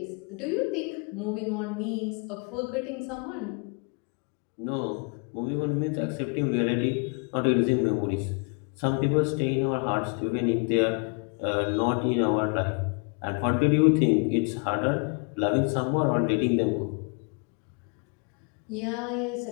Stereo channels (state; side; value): quieter; right; 37.3 dB